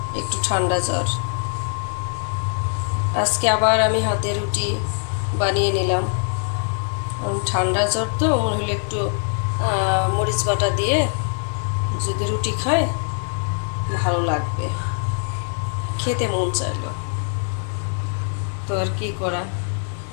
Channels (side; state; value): right; silent; 64 dB below the other